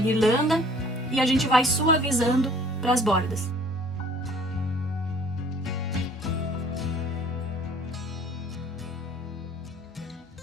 e a gente vai suavizando para as bordas.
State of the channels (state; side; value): normal; both; correlation 0.54